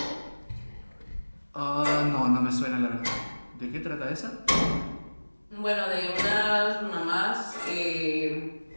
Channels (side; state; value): both; inverted; correlation -1.00